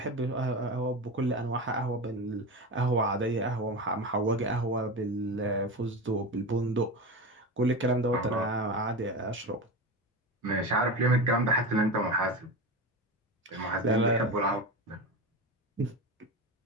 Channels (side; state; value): both; normal; correlation 0.23